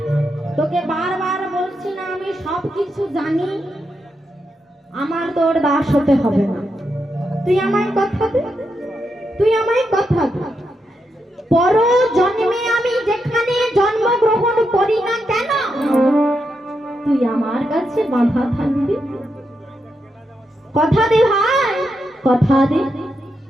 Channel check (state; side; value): normal; both; correlation 0.84